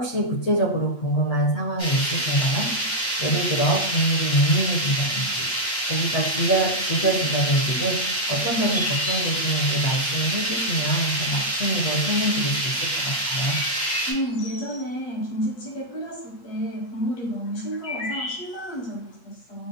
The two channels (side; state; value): right; late; 8.4 ms